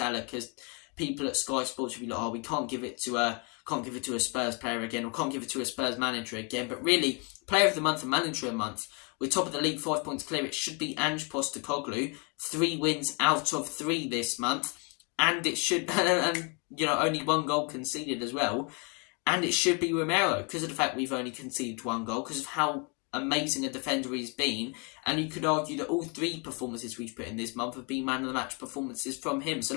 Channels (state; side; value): quieter; right; 33.8 dB